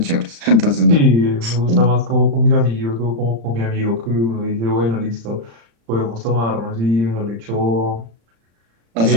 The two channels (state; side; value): late; left; 35 ms